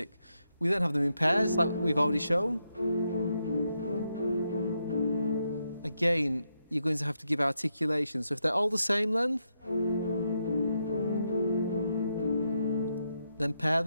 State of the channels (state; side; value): inverted; both; correlation -0.82